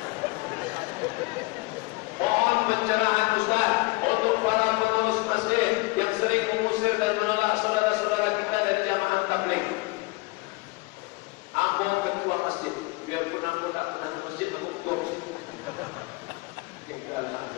Mohon pencerahan Ustaz untuk para pengurus masjid yang sering mengusir dan menolak saudara-saudara kita dari jamaah tabligh. Ambo ketua masjid, biarpun ambo tak pernah ke masjid, ambo ketua.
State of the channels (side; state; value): right; quieter; 24.7 dB